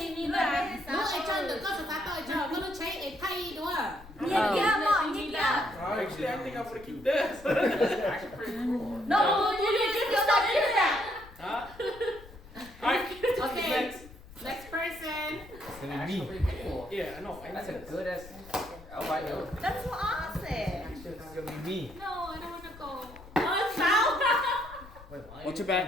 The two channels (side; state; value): left; noise; rumble, 19 dB below the sound